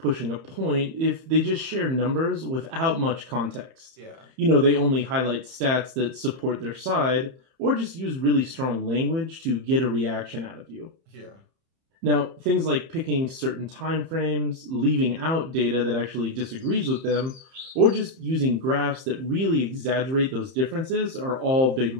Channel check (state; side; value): late; left; 30 ms